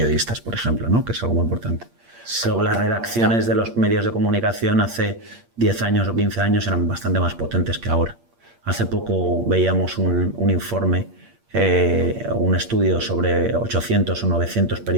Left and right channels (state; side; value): late; left; 8.6 ms